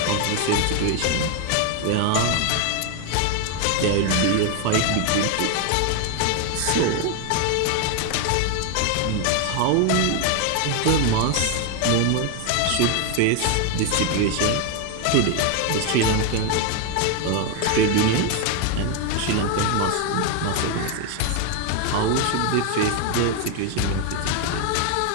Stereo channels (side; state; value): both; different; correlation 0.01